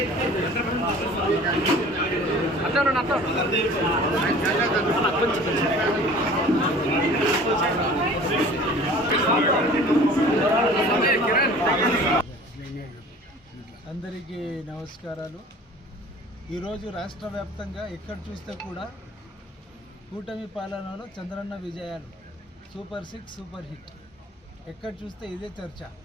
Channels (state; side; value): normal; both; correlation 0.46